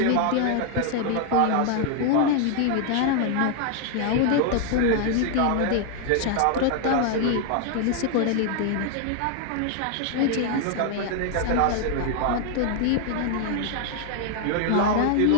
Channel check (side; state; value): both; different; correlation 0.00